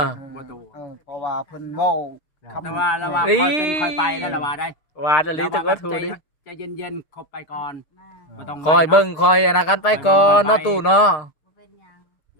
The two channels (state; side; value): late; right; 6.5 ms